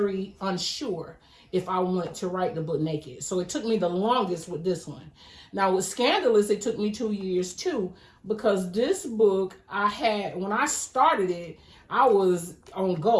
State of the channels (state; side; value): identical; both; correlation 1.00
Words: unsure if I wanted to write the book Naked. So it took me the longest with this one. Now with Scandalous, it took me 2 years too, because this book when I started it, I was on